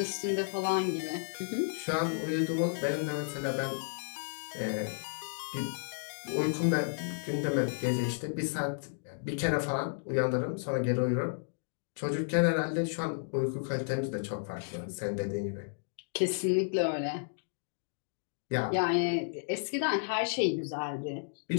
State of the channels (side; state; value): right; silent; digital silence